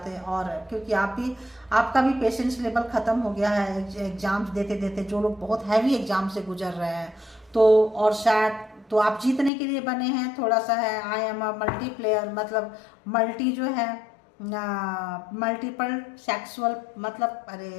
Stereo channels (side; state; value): right; drops out; at 9.5 s